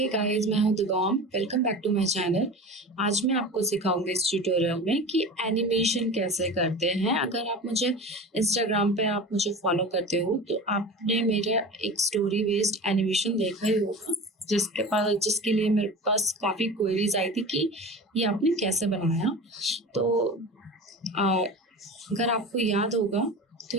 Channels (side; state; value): both; normal; correlation 0.33